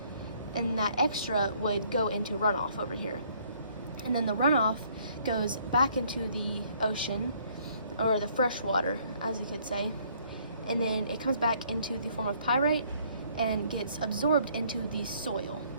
and that extra would go into runoff over here. And then the runoff goes back into the ocean, or the fresh water, as you could say, and then it comes back into the form of pyrite and gets absorbed into the soil.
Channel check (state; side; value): inverted; both; correlation -0.63